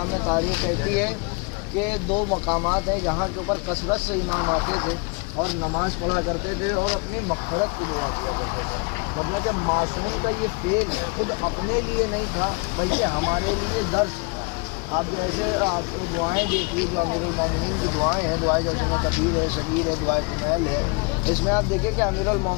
میں تاریخ کہتی ہے کہ دو مقامات ہیں جہاں کے اوپر کثرت سے امام آتے تھے اور نماز پڑھا کرتے تھے اور اپنی مغفرت کی دعا کیا کرتے تھے۔ مطلب کہ معصوم کا یہ فعل خود اپنے لیے نہیں تھا بلکہ ہمارے لیے درس تھا۔ آپ جیسے آپ دعائیں دیکھیے جو امیر المومنین کی دعائیں ہیں، دعائیں جیسے کبیر ہے، صغیر ہے، دعائیں کمیل ہے، اس میں آپ دیکھیں کہ امیر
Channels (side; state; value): right; quieter; 31.5 dB